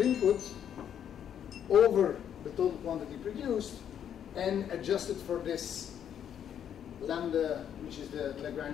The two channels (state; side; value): quieter; right; 9.2 dB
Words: over the total quantity produced and adjusted for this lambda, which is the